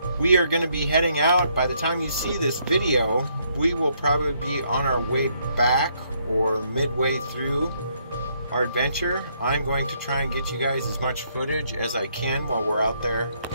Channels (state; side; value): inverted; both; correlation -0.71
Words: we are going to be heading out. By the time you see this video, we will probably be on our way back or midway through our adventure. I'm going to try and get you guys as much footage as I can while we're out there